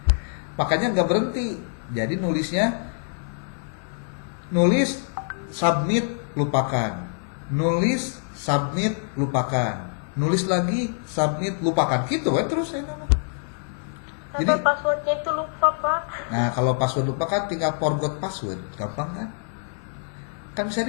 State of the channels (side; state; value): right; silent; 58 dB below the other